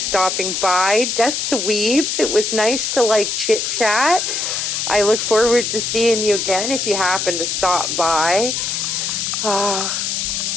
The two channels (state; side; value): noise; left; hiss, 1 dB below the sound